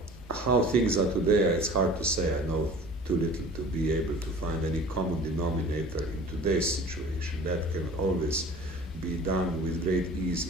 how things are today, it's hard to say. I know too little to be able to find any common denominator in today's situation. That can always be done with great ease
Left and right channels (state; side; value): normal; both; correlation 0.44